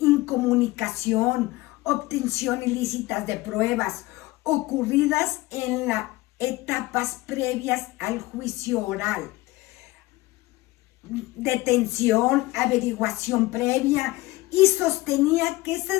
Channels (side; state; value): right; quieter; 19.5 dB